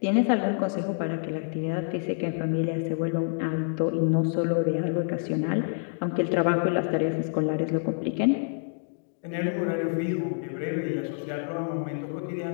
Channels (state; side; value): silent; right; digital silence